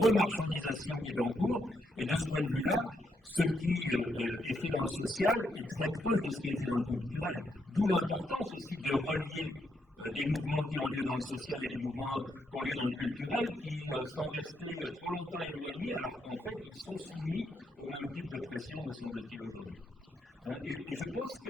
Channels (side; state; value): both; normal; correlation 0.78